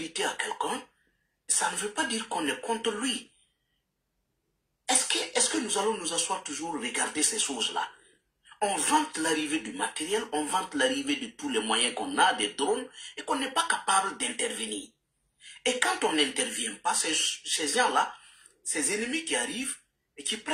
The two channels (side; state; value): both; identical; correlation 1.00